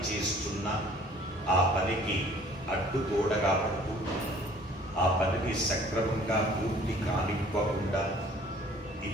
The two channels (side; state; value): both; normal; correlation 0.54